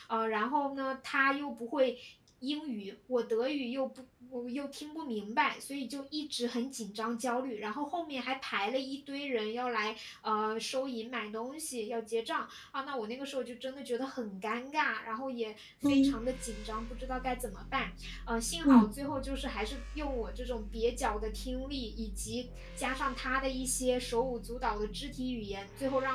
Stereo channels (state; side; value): identical; both; correlation 1.00